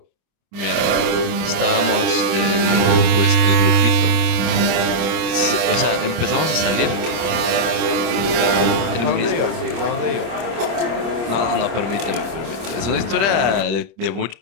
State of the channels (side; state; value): left; late; 26 ms